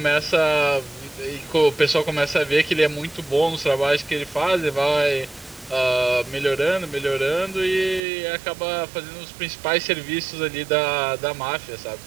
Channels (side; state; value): left; drops out; at 8.0 s